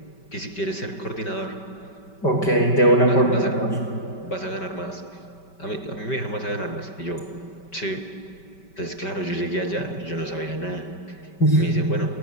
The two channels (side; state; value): right; late; 5.2 ms